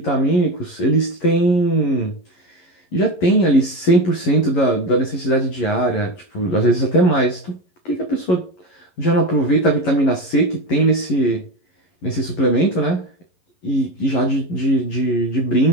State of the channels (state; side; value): late; right; 11 ms